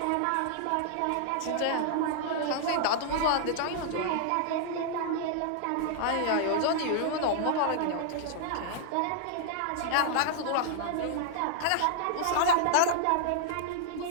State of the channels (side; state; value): both; different; correlation 0.00